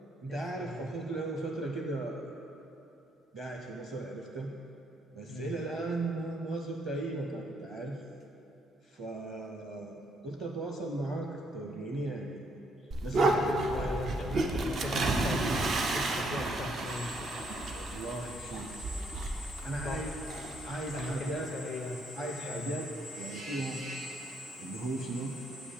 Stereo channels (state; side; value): normal; both; correlation 0.71